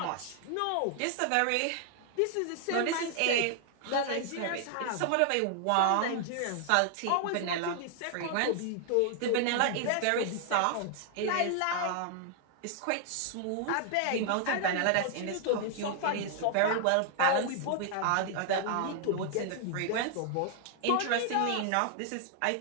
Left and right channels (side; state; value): both; different; correlation 0.00